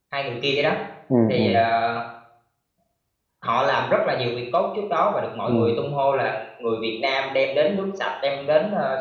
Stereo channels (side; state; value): both; identical; correlation 1.00